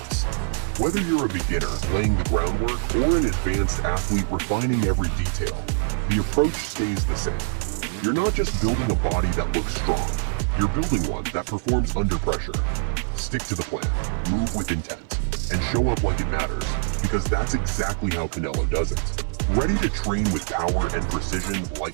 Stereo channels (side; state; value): left; silent; 56 dB below the other